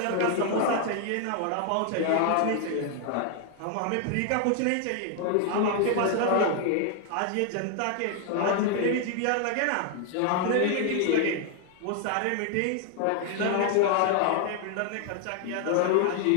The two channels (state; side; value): different; both; correlation 0.00